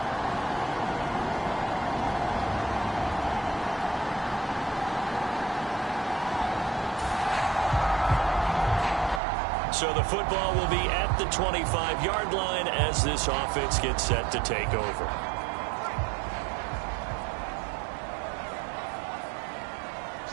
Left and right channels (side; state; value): left; drops out; at 9.2 s